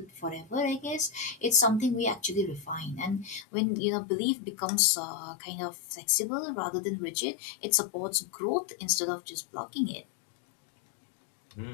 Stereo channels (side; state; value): right; drops out; at 3.5 s